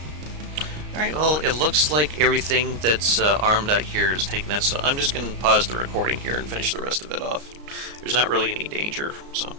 Alright, well, it looks like everything that's armed out here is taking it, so I'm just going to pause the recording here and finish the rest of it off. There's not really any danger, so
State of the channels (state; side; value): late; left; 34 ms